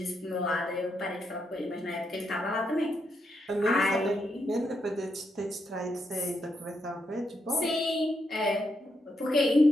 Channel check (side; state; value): both; normal; correlation 0.80